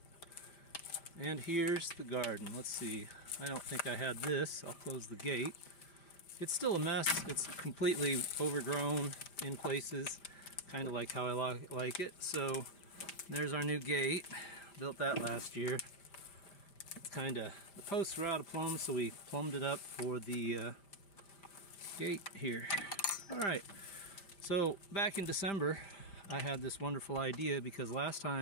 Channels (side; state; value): right; late; 5.0 ms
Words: And here's the garden. Let's see. I don't think I had this. I'll close the gate. It's still a mess. It's completely overgrown in places, kind of like how I like it. So there's our new gate. Built that last year. It's kind of, the posts were out of plumb, so we plumbed it up for the gate here. All right, so back in December I had this wonderful idea, because last